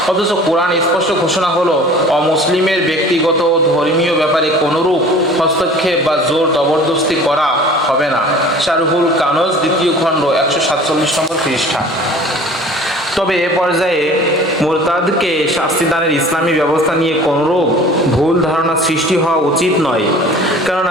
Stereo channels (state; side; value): normal; both; correlation 0.45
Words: অথচ কোরআন স্পষ্ট ঘোষণা হলো, অমুসলিমের ব্যক্তিগত ধর্মীয় ব্যাপারে কোনোরূপ হস্তক্ষেপ বা জোর জবরদস্তি করা হবে না। শারহুল কানজ 2য় খণ্ড 147 নম্বর পৃষ্ঠা। তবে এ পর্যায়ে মুরতাদকে শাস্তিদানের ইসলামী ব্যবস্থা নিয়ে কোনোরূপ ভুল ধারণা সৃষ্টি হওয়া উচিত নয়,